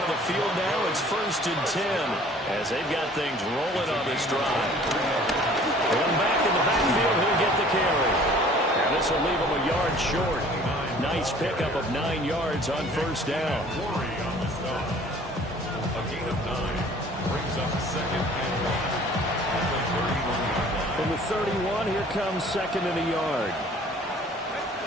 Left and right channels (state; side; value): normal; both; correlation 0.51